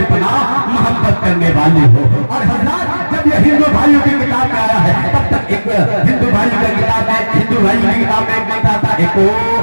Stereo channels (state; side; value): inverted; both; correlation -1.00